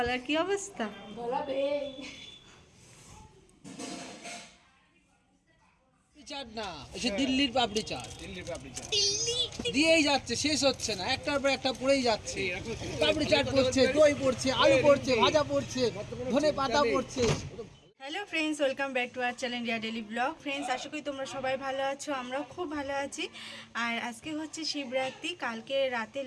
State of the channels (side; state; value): both; identical; correlation 1.00